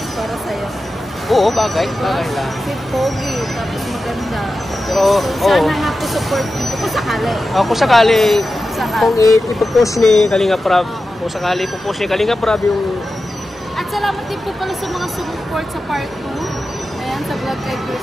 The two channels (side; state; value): both; normal; correlation 0.93